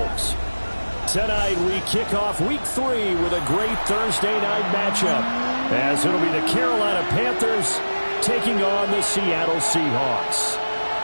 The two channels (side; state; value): both; inverted; correlation -1.00